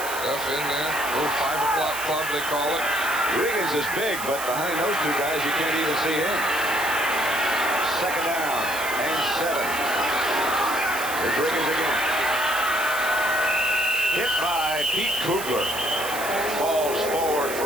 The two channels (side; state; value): right; noise; hiss, 8 dB below the sound